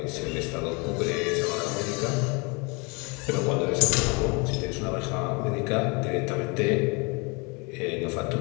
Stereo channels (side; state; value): right; quieter; 30.3 dB